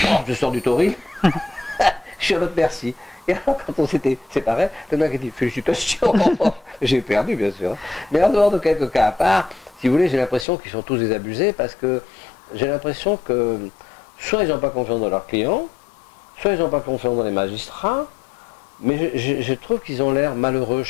je sors du tauril, je suis à votre merci. Et alors quand on s'était séparés, le mec a dit, félicitations, j'ai perdu bien sûr. Mais en dehors de quelques cas à part, si vous voulez, j'ai l'impression qu'ils sont tous désabusés, parce que j'ai l'impression que soit ils n'ont pas confiance dans leurs clients, soit ils n'ont pas confiance dans les magistrats, mais je trouve qu'ils ont l'air malheureux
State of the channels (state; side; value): drops out; right; at 10.5 s